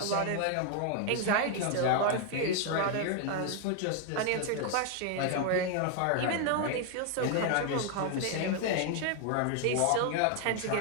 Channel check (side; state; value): both; different; correlation 0.00